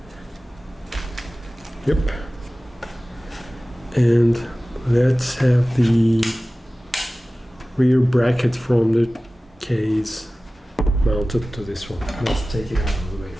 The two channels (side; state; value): both; normal; correlation 0.97